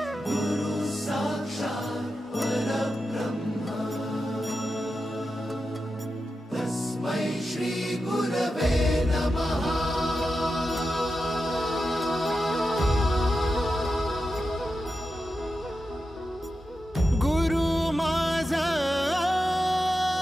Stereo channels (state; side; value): normal; both; correlation 0.90